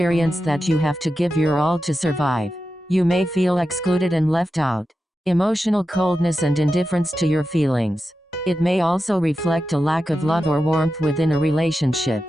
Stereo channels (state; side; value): normal; both; correlation 0.91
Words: that you have to give your all to survive. You may feel excluded and left out. Emotional coldness and indifference to your feelings. It may also reflect a lack of love or warmth within a relationship.